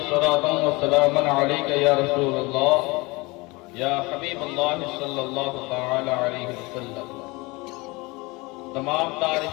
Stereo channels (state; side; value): quieter; right; 24.4 dB